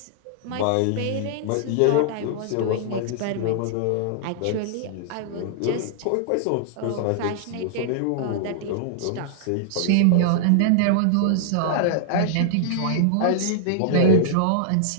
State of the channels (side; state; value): both; different; correlation -0.01